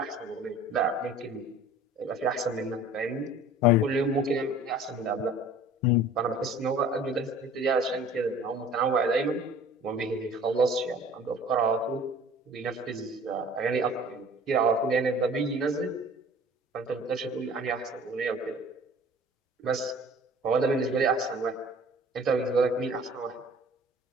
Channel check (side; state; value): both; normal; correlation 0.47